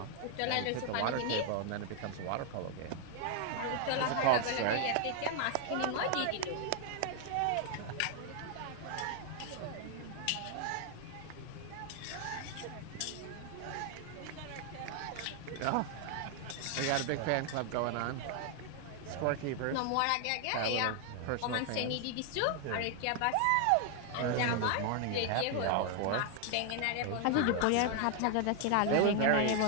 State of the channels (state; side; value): different; both; correlation 0.00